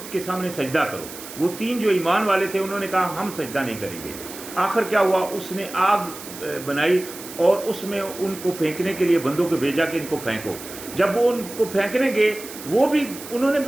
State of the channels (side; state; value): right; noise; hiss, 13 dB below the sound